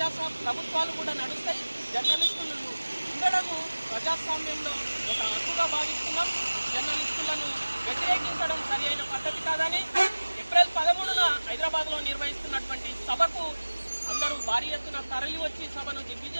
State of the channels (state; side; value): inverted; both; correlation -1.00